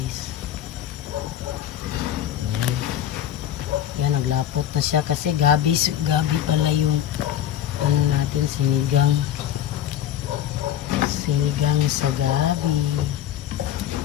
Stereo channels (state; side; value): quieter; right; 11.2 dB